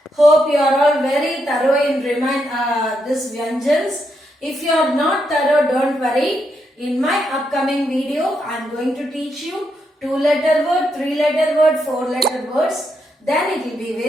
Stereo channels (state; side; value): normal; both; correlation 0.80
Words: Hope you are all very thorough in this Vyanjans. If you are not thorough, don't worry. In my upcoming video, I am going to teach you 2-letter word, 3-letter word, 4-letter words. Then it will be